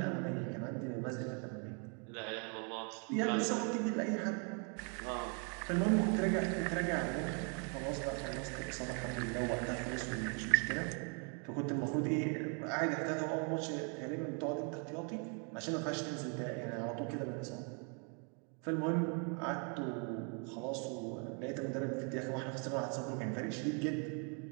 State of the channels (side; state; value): left; quieter; 38.1 dB